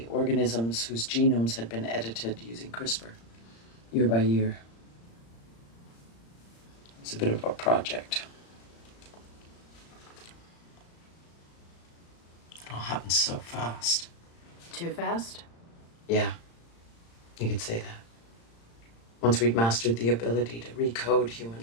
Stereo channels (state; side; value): late; right; 35 ms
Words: organisms whose genomes had been edited using CRISPR, year by year. It's a bit of a project. It all happened so fast. Too fast? Yeah, you could say that. Once we'd mastered the ability to recode